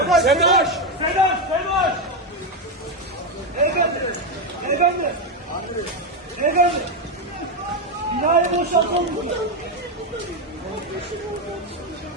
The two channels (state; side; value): normal; both; correlation 0.08